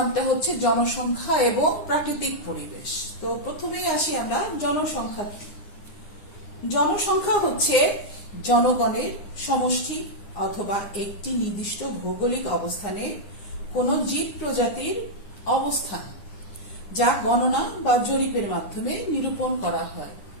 হচ্ছে জনসংখ্যা এবং প্রাকৃতিক পরিবেশ। তো প্রথমেই আসি আমরা জনসংখ্যা কি। জনসংখ্যা হচ্ছে জনগণের সমষ্টি অথবা একটি নির্দিষ্ট ভৌগোলিক অবস্থানে কোন জীব প্রজাতির অবস্থান, যা গণনা বা জরিপের মাধ্যমে নিরূপণ করা হয়।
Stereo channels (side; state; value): right; late; 9.9 ms